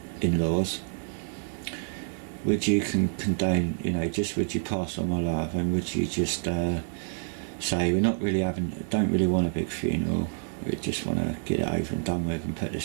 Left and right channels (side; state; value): left; silent; digital silence